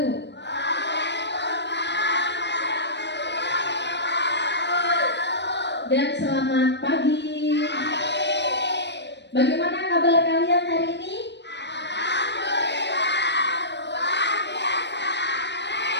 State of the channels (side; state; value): right; late; 0.51 ms